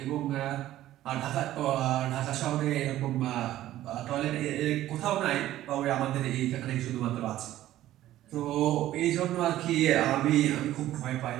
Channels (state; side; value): quieter; left; 14.0 dB